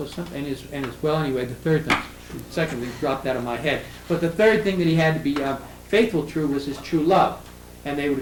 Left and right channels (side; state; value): both; identical; correlation 1.00